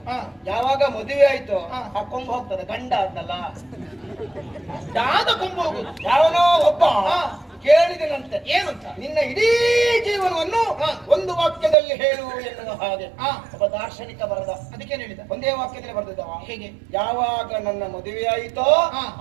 ಯಾವಾಗ ಮದುವೆ ಆಯ್ತು ಆ ಕೊಂಬು ಹೋಗ್ತದೆ, ಗಂಡ ಅಂತಲ್ಲ, ದಾದ ಕೊಂಬು ಹೋಗುದು. ಯಾವನೋ ಒಬ್ಬ ಕೇಳಿದನಂತೆ, ಏನಂತ? ನಿನ್ನ ಇಡೀ ಜೀವನವನ್ನು ಒಂದು ವಾಕ್ಯದಲ್ಲಿ ಹೇಳು ಎನ್ನುವ ಹಾಗೆ. ಒಬ್ಬ ದಾರ್ಶನಿಕ ಬರದ. ಅದಕ್ಕೇನು ಹೇಳಿದ? ಒಂದೇ ವಾಕ್ಯದಲ್ಲಿ ಬರೆದಿದ್ದವ. ಹೇಗೆ? ಯಾವಾಗ ನನ್ನ ಮದುವೆ ಆಯಿತೋ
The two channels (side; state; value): left; drops out; at 11.8 s